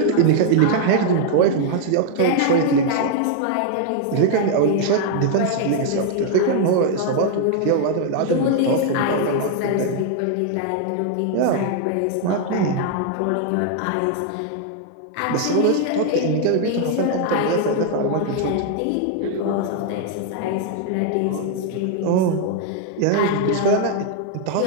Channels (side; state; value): both; different; correlation 0.00